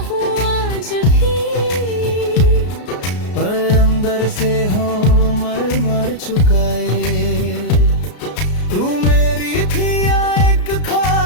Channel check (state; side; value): late; right; 33 ms